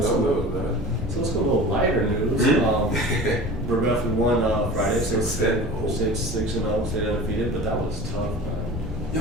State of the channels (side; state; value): both; normal; correlation 0.38